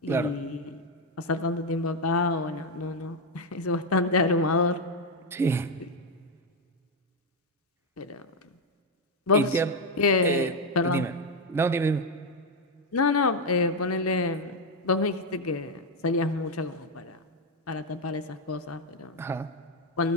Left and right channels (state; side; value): normal; both; correlation 0.05